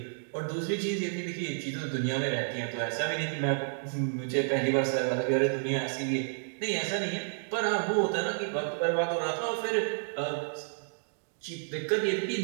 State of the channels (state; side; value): silent; left; digital silence